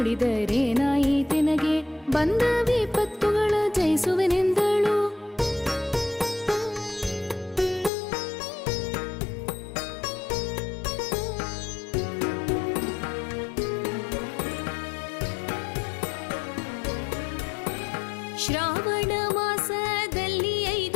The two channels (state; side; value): drops out; right; at 7.9 s